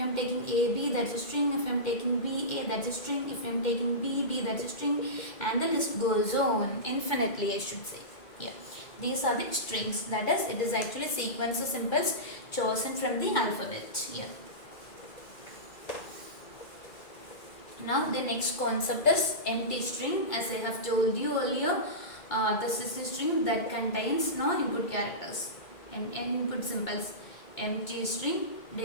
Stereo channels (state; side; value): late; right; 2.0 ms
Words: I am taking AB, that's a string. If I am taking BA, that's a string. If I am taking BB, that's a string. And the list goes on infinitely, I should say. Yeah, these are the strings. That is, it is actually sequence of symbols chosen from the alphabet. Yeah. Now the next concept is empty string. As I have told you earlier, this is a string that contains no input characters and input symbols. Empty string